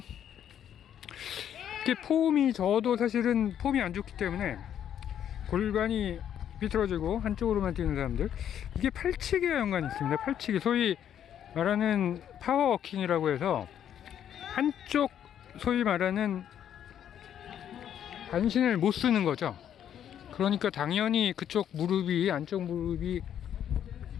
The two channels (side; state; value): right; quieter; 9.8 dB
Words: 이렇게 폼이, 저도 사실은 폼이 안 좋기 때문에 골반이 비틀어지고 한쪽으로만 뛰는 사람들, 이게 팔치기와 연관이 있습니다. 팔치기, 소위 말하는 파워워킹이라고 해서 한쪽, 소위 말하는 반신을 못 쓰는 거죠. 그러니까 당연히 그쪽 무릎이, 안쪽 무릎이